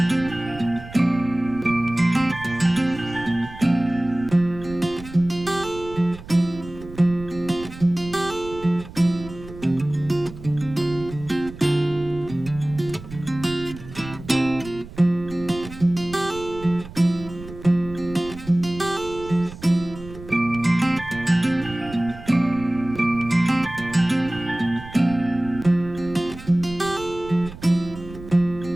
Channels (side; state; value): right; noise; rumble, 15 dB below the sound